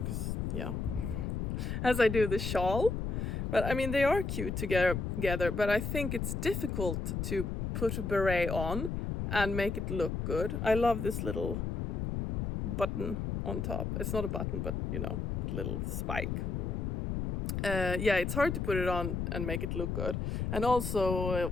as I do the shawl, but I mean, they are cute together, but I think it's difficult to put a beret on and make it look good. I love this little button on top. It's not a button, but you know, the little spike. Yeah, it's hard to put it on and make it look good. And also,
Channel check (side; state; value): left; noise; rumble, 2 dB below the sound